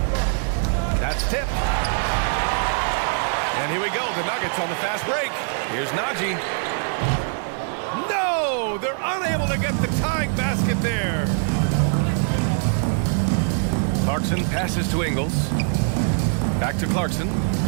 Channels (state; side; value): silent; left; 62 dB below the other